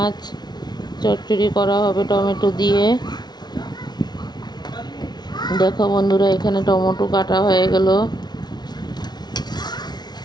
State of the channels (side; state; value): right; late; 0.20 ms